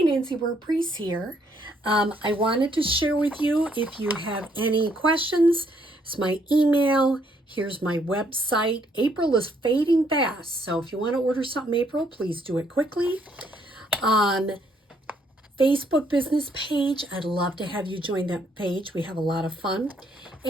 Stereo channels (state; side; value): normal; both; correlation 0.69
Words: Nancy Burt-Preece here. I wanted to share with you if you have any questions. It's my email. Here's my website. April is fading fast, so if you want to order something April, please do it quickly. Facebook business page. I'd love to have you join that page. We have a lot of fun.